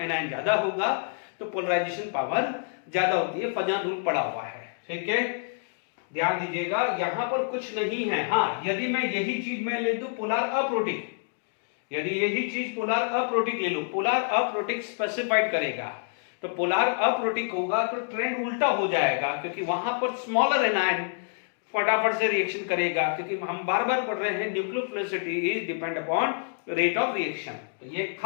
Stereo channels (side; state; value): right; silent; digital silence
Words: ज्यादा होगा तो पोलराइजेशन पावर ज्यादा होती है। फजन रूल पड़ा हुआ है, ठीक है। ध्यान दीजिएगा यहां पर कुछ नहीं है। हाँ, यदि मैं यही चीज मैं ले दूं पोलर अप्रोटिक, यदि यही चीज पोलर अप्रोटिक ले लो, पोलर अप्रोटिक स्पेसिफाइड करेगा, तो पोलर अप्रोटिक होगा तो ट्रेंड उल्टा हो जाएगा, क्योंकि वहां पर स्मॉलर एनायन फटाफट से रिएक्शन करेगा, क्योंकि हम बार बार पढ़ रहे हैं nucleophilicity is depend upon rate of reaction. तो ये